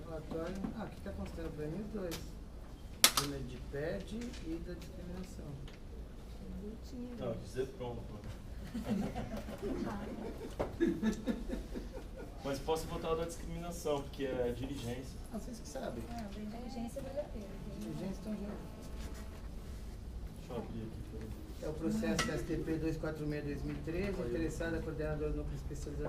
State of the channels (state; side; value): identical; both; correlation 1.00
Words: relatório. Ah, aqui está considerando para mim os 2. De PED e da discriminação. Não, dizer pronto. Mas posso votar o da discriminação, porque é diligência. Ah, vocês que sabem. Não, da inteligência vale a pena. Diligência estão juntos. Deixa eu abrir aqui. É o processo STP 246-2013, interessada coordenadora do Núcleo